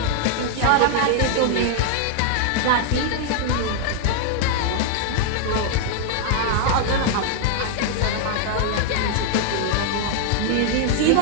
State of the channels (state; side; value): different; both; correlation 0.00